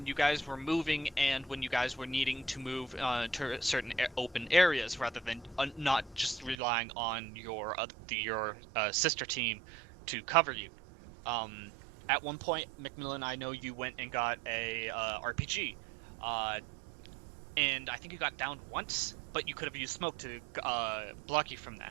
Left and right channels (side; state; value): left; drops out; at 6.6 s